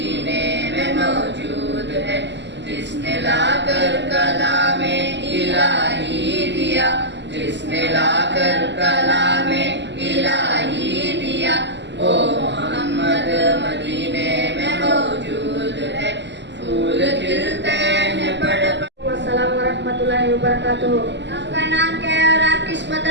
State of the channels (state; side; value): late; left; 0.51 ms